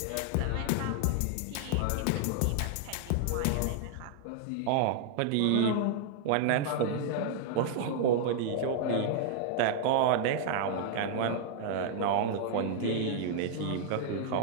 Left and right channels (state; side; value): different; both; correlation -0.01